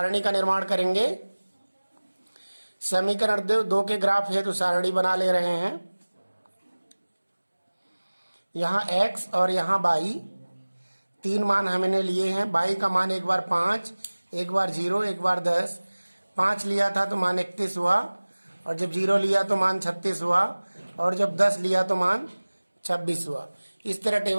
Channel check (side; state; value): both; inverted; correlation -1.00